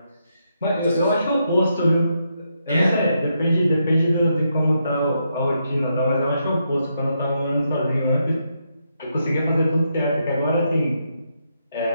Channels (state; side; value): inverted; both; correlation -0.80